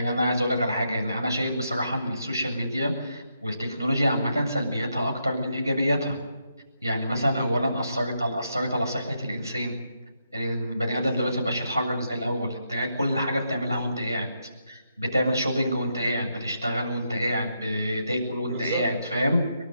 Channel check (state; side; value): inverted; both; correlation -0.80